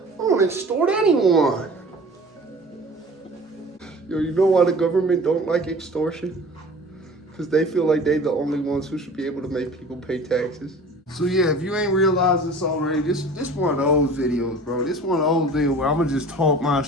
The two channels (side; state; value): both; normal; correlation 0.42